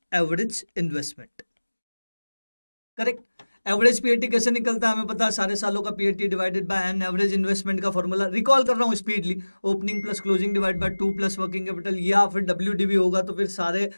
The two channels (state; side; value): inverted; both; correlation -1.00